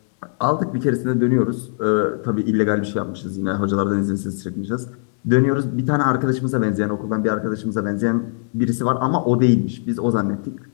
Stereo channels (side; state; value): right; silent; 65 dB below the other